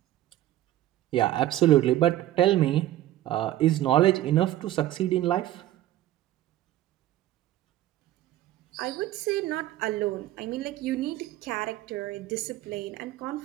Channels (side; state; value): left; quieter; 14.0 dB